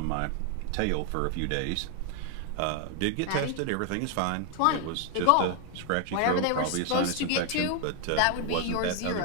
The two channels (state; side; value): different; both; correlation 0.00